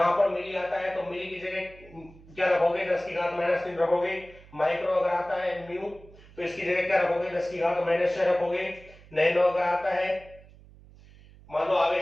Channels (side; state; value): right; noise; hum, 23 dB below the sound